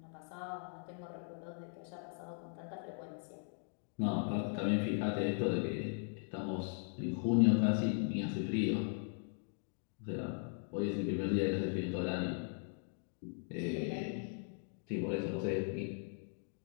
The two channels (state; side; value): silent; right; 52 dB below the other